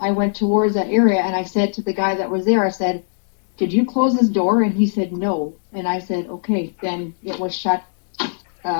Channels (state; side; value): silent; right; digital silence